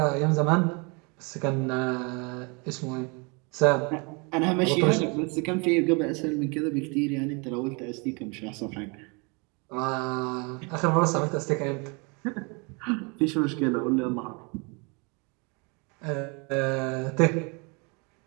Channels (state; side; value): quieter; left; 31.3 dB